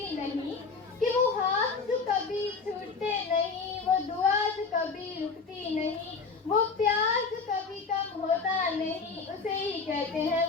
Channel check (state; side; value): quieter; right; 4.7 dB